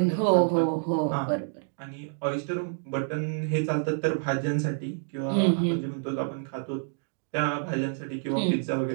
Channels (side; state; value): left; silent; digital silence